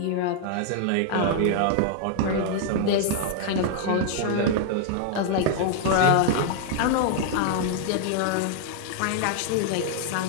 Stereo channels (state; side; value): different; both; correlation -0.01